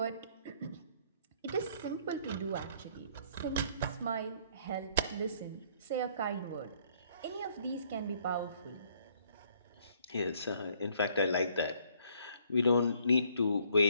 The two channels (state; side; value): inverted; both; correlation -0.63